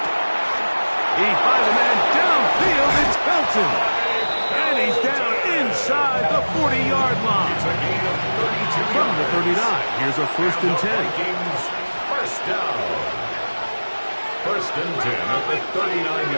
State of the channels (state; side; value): inverted; both; correlation -1.00